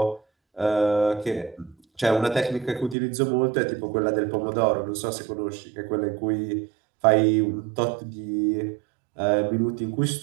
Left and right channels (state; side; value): drops out; left; at 3.0 s